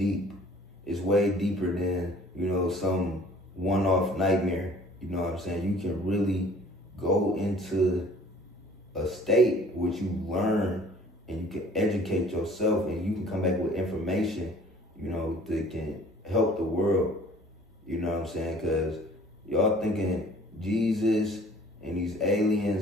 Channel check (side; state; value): both; normal; correlation 0.52